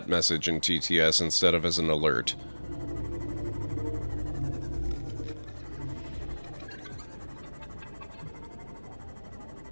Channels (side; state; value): both; inverted; correlation -1.00